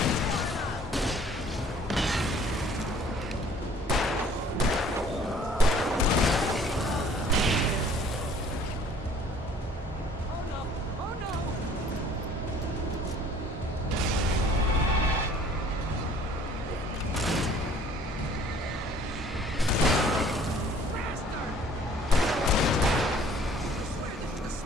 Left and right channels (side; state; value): both; normal; correlation 0.54